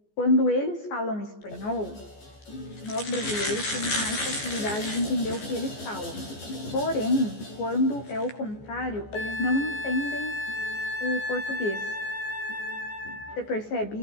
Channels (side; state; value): right; late; 14 ms